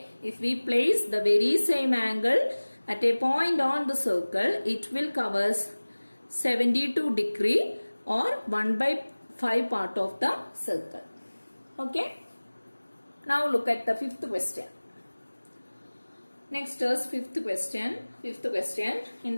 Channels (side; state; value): both; inverted; correlation -1.00